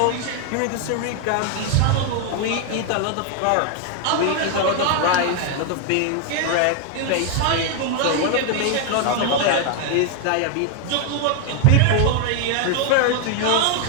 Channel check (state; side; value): different; both; correlation 0.00